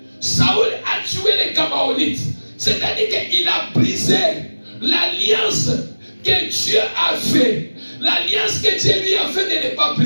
Saül a tué les Gabaonites. C'est-à-dire qu'il a brisé l'alliance que Dieu a fait. L'alliance que Dieu lui a fait de ne pas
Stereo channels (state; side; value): inverted; both; correlation -1.00